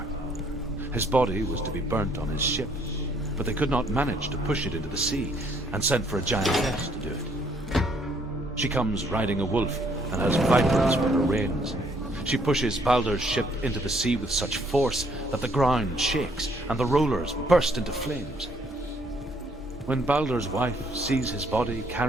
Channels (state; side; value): normal; both; correlation 0.66